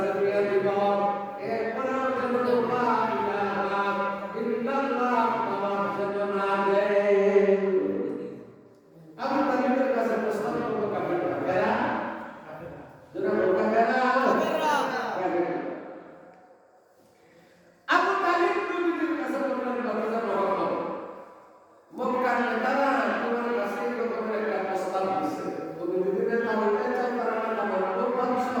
বিয়ে দিব। এরপরে যেন লা ইলাহা ইল্লাল্লাহ নামাজ যেন না দেয়। আবু তালেবের কাছে প্রস্তাব করলো কাফিররা, কারা? যারা লোকা কারা? কাফিররা। আবু তালেব নবীর কাছে বললেন, ভাতিজা মুহাম্মদ, মক্কার নেতারা তোমার কাছে এরকম একটা প্রস্তাব দিছে, তুমি যদি নেতা হইতে চাও তারা নেতা বানাবো, বাদশা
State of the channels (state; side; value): identical; both; correlation 1.00